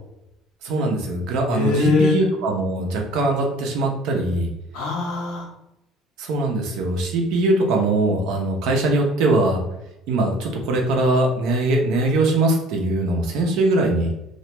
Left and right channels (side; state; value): both; normal; correlation 0.51